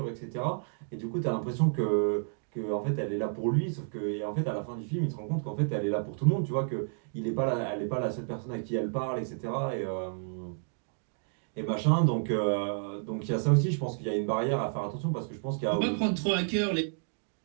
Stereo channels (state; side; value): silent; left; digital silence